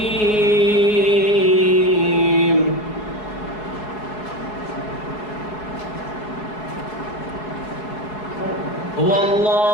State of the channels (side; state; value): right; late; 4.7 ms